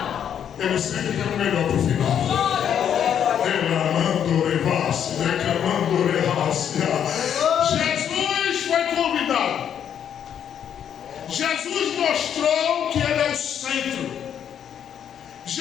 Ele sempre tem o melhor para o final. Jesus foi convidado. Jesus mostrou que Ele é o centro.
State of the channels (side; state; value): right; quieter; 8.9 dB